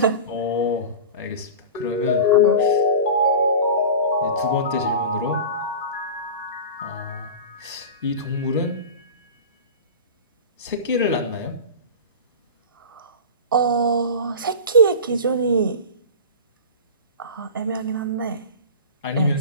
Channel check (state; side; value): inverted; both; correlation -0.31